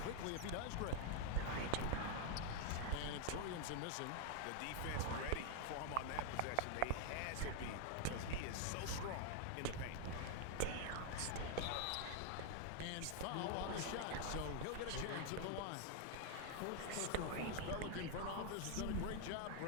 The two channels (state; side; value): different; both; correlation 0.00